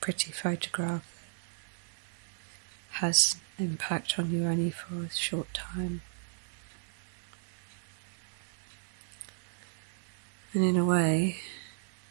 pretty photograph that has impact on you only for a short time. And in a way,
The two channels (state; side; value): silent; left; digital silence